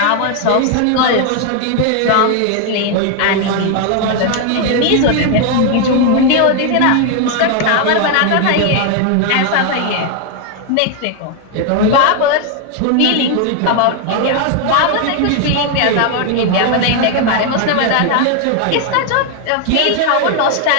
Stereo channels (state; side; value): different; both; correlation 0.01